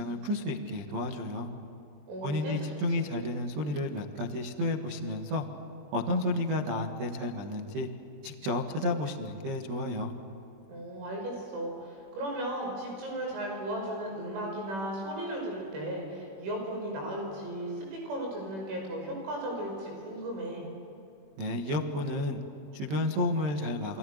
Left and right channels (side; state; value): left; late; 20 ms